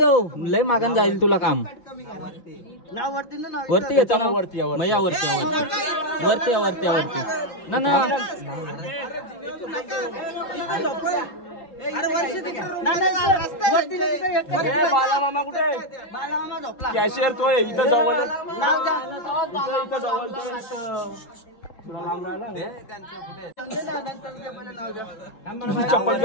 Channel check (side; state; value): right; late; 3.8 ms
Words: लय मागान जाईल तुला काम वरती घेतो ना वरती वरती वरती वरती वरती ना ना बालामामा कुठे कॅशियर तो इथं जवळ चप्पल